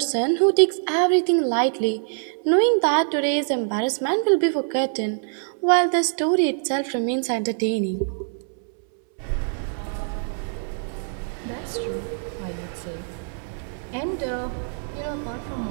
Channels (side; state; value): left; silent; 60 dB below the other